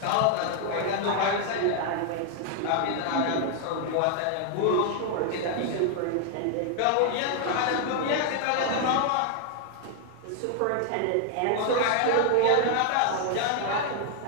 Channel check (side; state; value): both; different; correlation 0.00